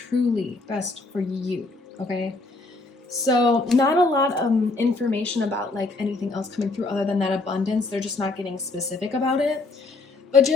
best for you, okay? So not a lot of information about like anything else coming through other than that abundance. They're just not getting specific about it. But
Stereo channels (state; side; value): quieter; right; 3.3 dB